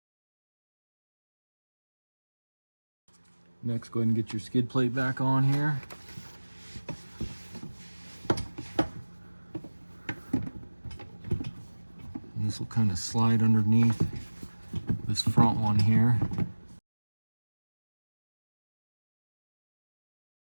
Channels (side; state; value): both; inverted; correlation -1.00